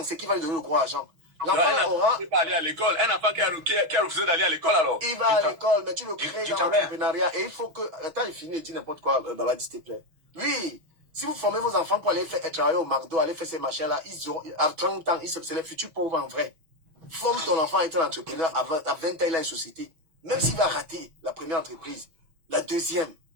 ce qui va lui donner le gros argent. L'enfant aura... Il va aller à l'école. Un enfant qui a refusé d'aller à l'école alors. Il va à l'école, mais tu le crées dans l'entrepreneuriat. Et il faut que... Attends, il finit et dit n'importe quoi, Babadi, s'il te plaît. Oui, si vous formez vos enfants pour aller travailler au McDo, aller faire ces machins-là, ils ont, à 30 ans, c'est les futurs pauvres en vrai. Forme ton enfant à être un entrepreneur, à 20 ans, il a une société. Même s'il va rater la première entreprise, la deuxième,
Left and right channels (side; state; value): left; late; 6.3 ms